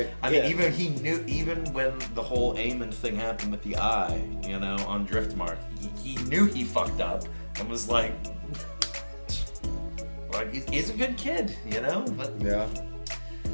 I mean, even when the whole Aemon thing happened with the eye, you know, on Driftmark, he knew he fucked up and was like he's a good kid, you know. But Yeah.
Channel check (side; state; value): both; inverted; correlation -1.00